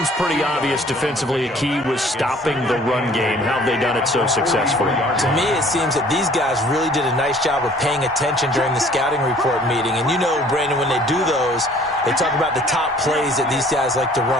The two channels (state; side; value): normal; both; correlation 0.54